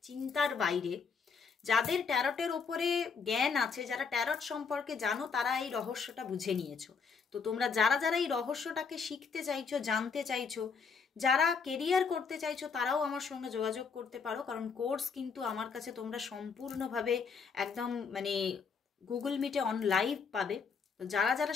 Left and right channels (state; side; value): quieter; right; 5.6 dB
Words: চিন্তার বাইরে। যাদের ট্যারটের ওপরে জ্ঞান আছে, যারা ট্যারট সম্পর্কে জানো, তারা এই রহস্যটা বুঝে নিয়েছো। তো তোমরা যারা যারা এই রহস্যটাকে শিখতে চাইছো, জানতে চাইছো, যারা কেরিয়ার করতে চাইছো, তারাও আমার সঙ্গে যোগাযোগ করতে পারো, কারণ কোর্স কিন্তু আমার কাছে তোমরা সম্পূর্ণভাবে একদম মানে গুগল মিটে অন লাইভ পাবে। তো যারা যারা